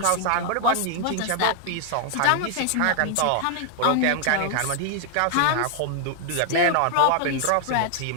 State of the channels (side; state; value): both; different; correlation 0.00